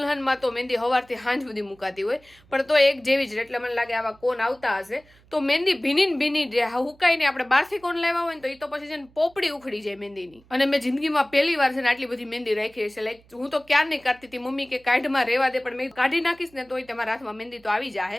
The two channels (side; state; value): right; noise; hum, 29 dB below the sound